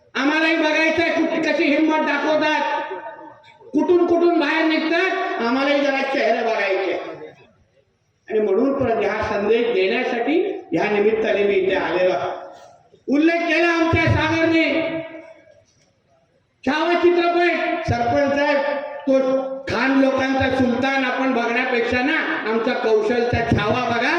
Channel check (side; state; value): both; identical; correlation 1.00